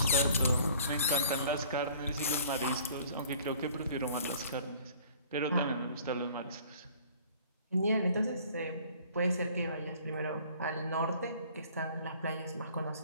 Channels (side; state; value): both; inverted; correlation -0.53